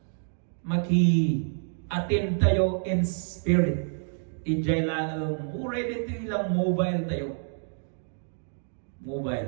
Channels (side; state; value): left; silent; digital silence